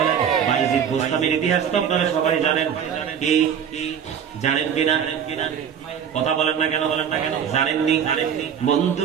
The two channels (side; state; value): left; quieter; 8.2 dB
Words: বাইজিদ বোস্তামের ইতিহাস তো আপনারা সবাই জানেন। কি জানেন কিনা? কথা বলেন না কেন? জানেননি?